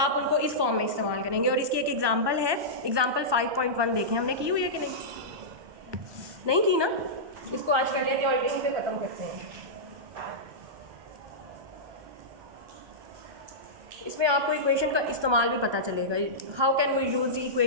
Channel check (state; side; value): late; left; 1.2 ms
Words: उनको इस फॉर्म में इस्तेमाल करेंगे। और इसकी एक एग्जांपल है, एग्जांपल 5.1 देखें, हमने की हुई है कि नहीं की ना? इसको आज कर लेते हैं और यहीं पे ख़त्म करते हैं। इसमें आपको इक्वेशन का इस्तेमाल भी पता चलेगा, how can we use the